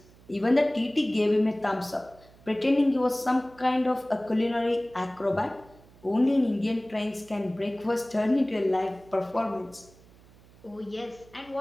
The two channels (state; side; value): noise; right; hum, 25 dB below the sound